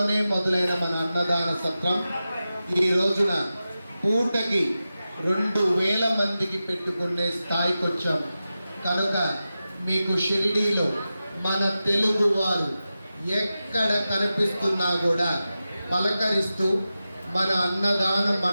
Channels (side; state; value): both; inverted; correlation -0.93